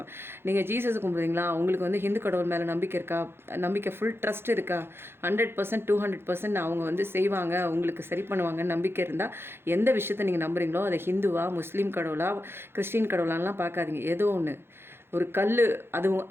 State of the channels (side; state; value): left; late; 0.11 ms